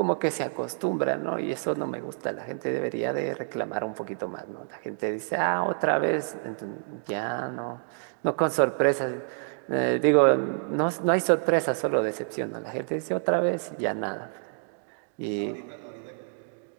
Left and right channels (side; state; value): left; silent; digital silence